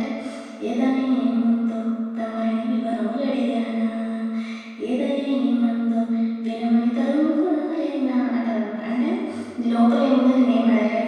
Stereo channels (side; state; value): both; identical; correlation 1.00